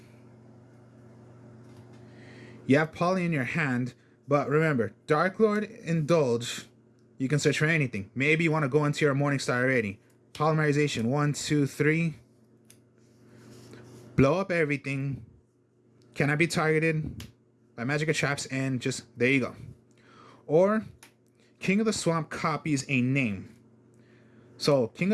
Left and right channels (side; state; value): both; identical; correlation 1.00